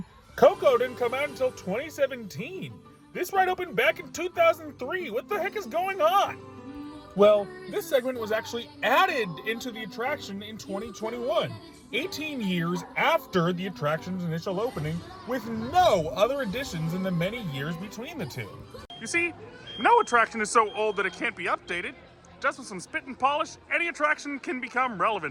Coco didn't come out until 2017. This ride opened back in 2003. What the heck is going on? Well, this segment was actually added into the attraction in 2021, 18 years after the attraction's initial opening, with no other additions in the many years between the two. You see, no attraction is so old that it can't be updated. Just with some spit and polish, any attraction can become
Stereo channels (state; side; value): identical; both; correlation 1.00